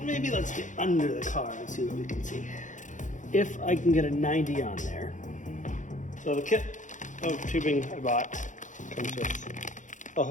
Maybe let's get under the car and see what we can see. If I can get a 90 on there. So the kit of tubing I bought comes with a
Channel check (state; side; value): late; right; 0.36 ms